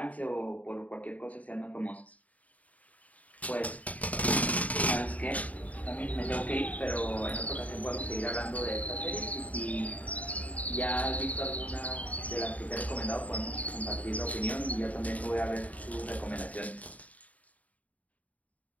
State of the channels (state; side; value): late; right; 0.070 ms